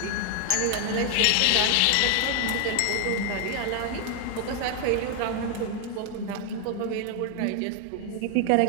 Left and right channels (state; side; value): different; both; correlation 0.00